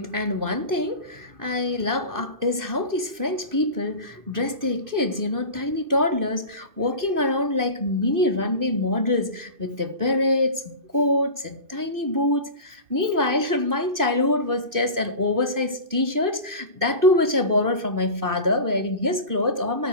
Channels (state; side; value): late; left; 2.6 ms